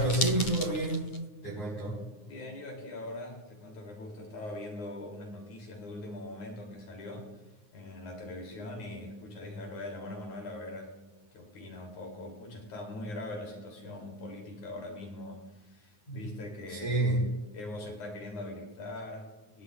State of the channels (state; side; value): late; right; 9.6 ms